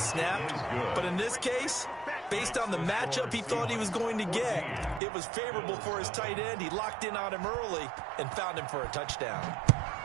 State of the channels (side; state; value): left; drops out; at 5.0 s